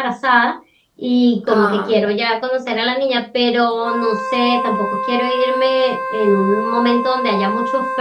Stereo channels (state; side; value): identical; both; correlation 1.00